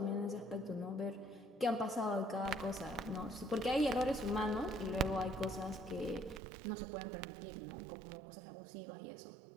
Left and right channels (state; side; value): drops out; left; at 6.4 s